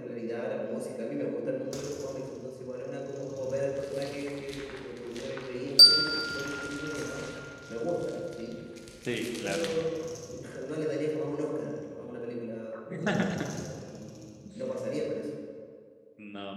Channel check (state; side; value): identical; both; correlation 1.00